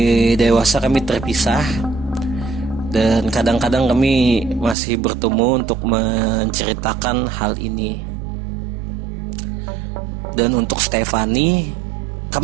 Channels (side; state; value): left; drops out; at 4.8 s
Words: dewasa, kami terpisah, dan kadang-kadang kami masih bertemu untuk menceritakan hal ini. Dan untuk Stefani,